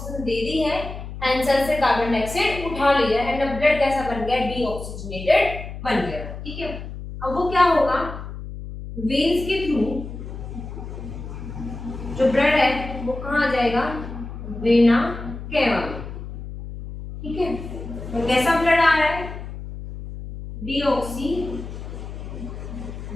दे दी है एंड सेल से कार्बन डाइऑक्साइड उठा लिया एंड अब ब्लड कैसा बन गया? डीऑक्सीजनेटेड बन गया, ठीक है। अब वो क्या होगा? वेन्स के थ्रू जो ब्लड है वो कहां आ जाएगा? वेना केवा में, ठीक है। तो कैसा ब्लड आ रहा है? डीऑक्सीजनेटेड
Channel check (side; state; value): left; noise; hum, 10 dB below the sound